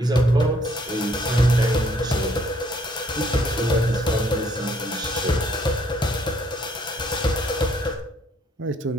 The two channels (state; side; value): normal; both; correlation 0.65